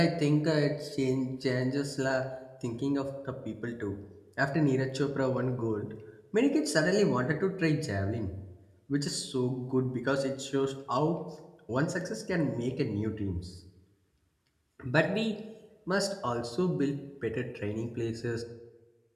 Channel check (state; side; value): identical; both; correlation 1.00